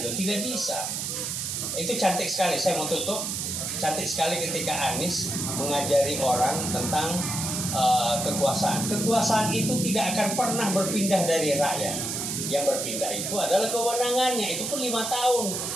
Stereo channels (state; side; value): noise; right; hiss, 3 dB below the sound